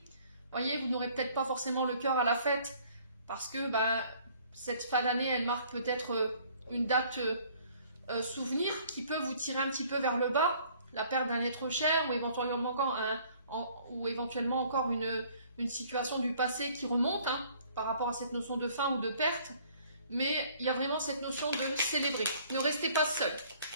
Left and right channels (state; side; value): inverted; both; correlation -0.57